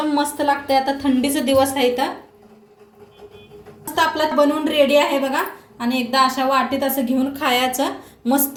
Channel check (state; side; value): identical; both; correlation 1.00